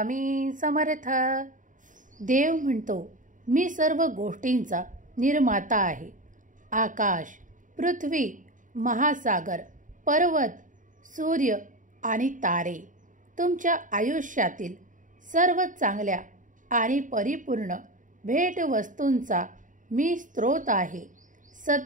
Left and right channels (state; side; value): late; left; 0.38 ms